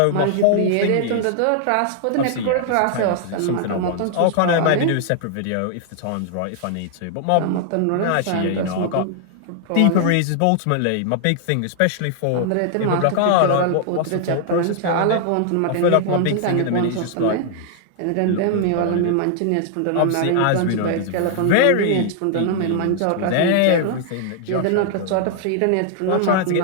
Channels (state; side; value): different; both; correlation 0.00